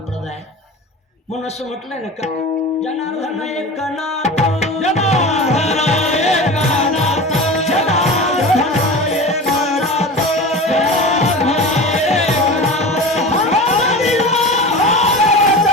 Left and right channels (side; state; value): both; normal; correlation 0.32